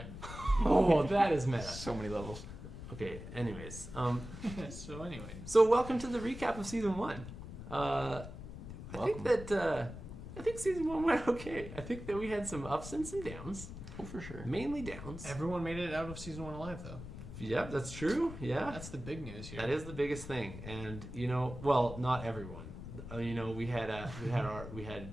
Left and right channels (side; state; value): left; noise; rumble, 11 dB below the sound